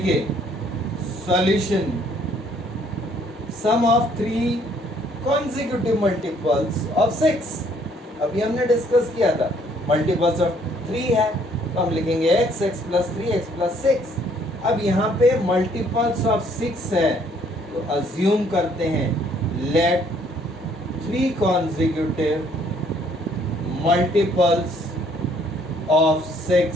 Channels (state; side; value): normal; both; correlation 0.63